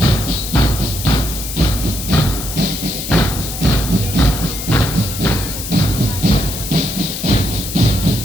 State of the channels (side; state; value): left; noise; hiss, 7 dB below the sound